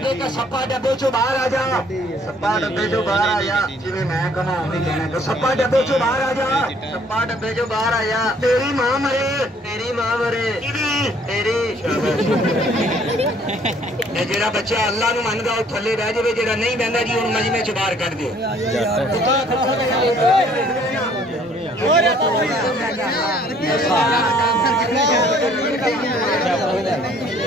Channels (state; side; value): normal; both; correlation 0.60